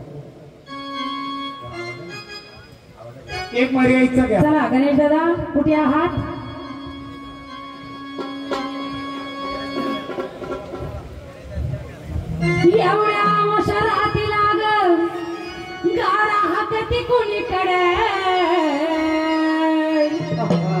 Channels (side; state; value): both; identical; correlation 1.00